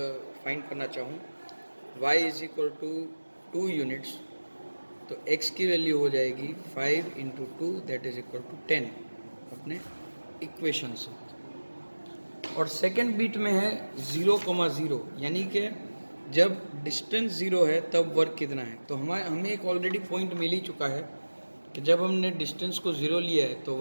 फाइंड करना चाहूँ y is equal to 2 units, तो x की वैल्यू हो जाएगी 5 into 2 that is equal to 10 अपने इक्वेशन से। और सेकेंड बीट में है 0,0, यानी कि जब डिस्टेंस 0 है तब वर्क कितना है। तो हमें एक ऑलरेडी पॉइंट मिल ही चुका है कि जब हमने डिस्टेंस को 0 लिया है तो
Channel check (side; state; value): both; inverted; correlation -1.00